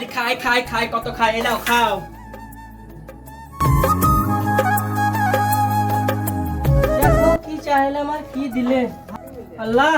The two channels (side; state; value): both; identical; correlation 1.00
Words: খাই খাই খাই, কত খাই, এলাও খাও। দেখো কি চাইলে আমার কি দিলে। আল্লাহ